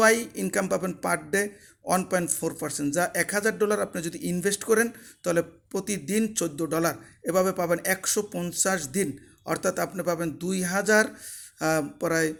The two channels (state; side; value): identical; both; correlation 1.00